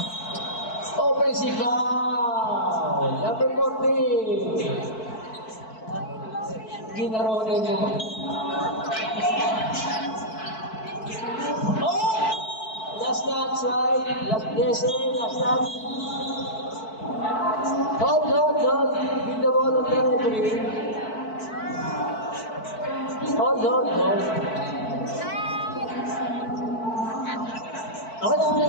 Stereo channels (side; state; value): right; late; 4.6 ms